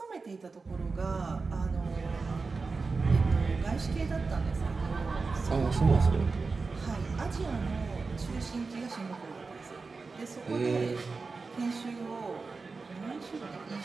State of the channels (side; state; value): left; quieter; 4.2 dB